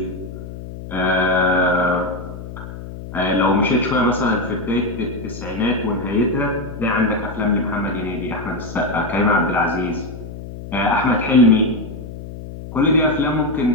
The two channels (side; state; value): left; noise; hum, 11 dB below the sound